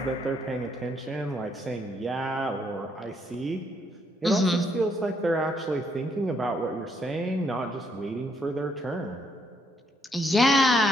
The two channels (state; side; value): normal; both; correlation 0.73